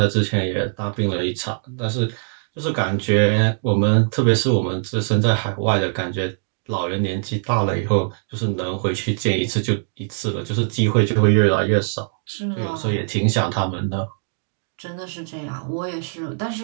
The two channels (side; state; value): left; silent; digital silence